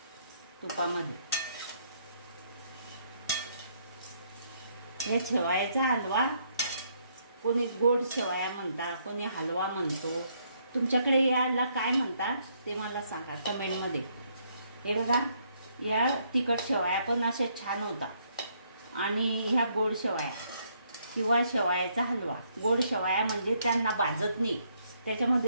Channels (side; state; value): both; inverted; correlation -0.71